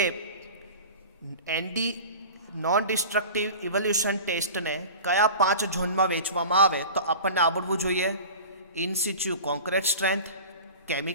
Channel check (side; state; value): both; inverted; correlation -0.35